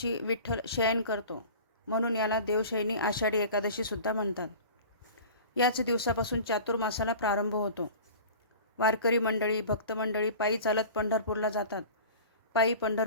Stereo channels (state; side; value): inverted; both; correlation -0.39